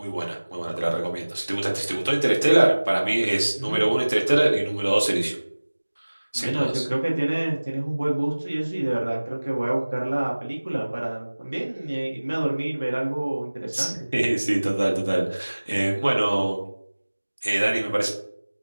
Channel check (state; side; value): inverted; both; correlation -1.00